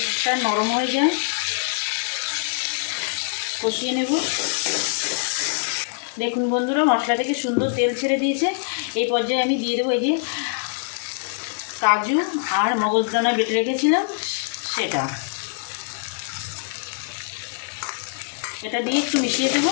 নরম হয়ে যায়। কষিয়ে নেব। দেখুন বন্ধুরা, মশলা থেকে সুন্দর তেল ছেড়ে দিয়েছে। এই পর্যায়ে আমি দিয়ে দেবো এই যে কাজু আর মগজদানা বেটে রেখেছিলাম সেটা, এটা দিয়ে একটু মিশিয়ে দেব।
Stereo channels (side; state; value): right; silent; 63 dB below the other